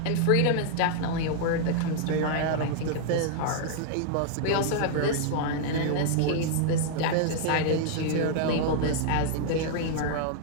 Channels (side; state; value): both; different; correlation -0.01